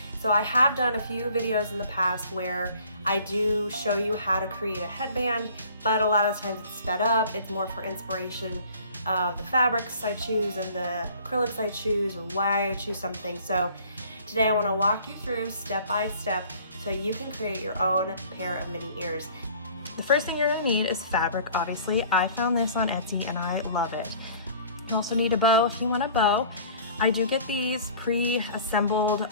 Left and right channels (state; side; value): inverted; both; correlation -0.50